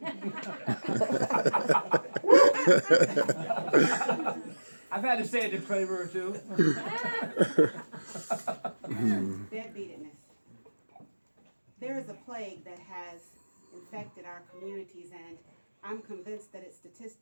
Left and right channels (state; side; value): inverted; both; correlation -1.00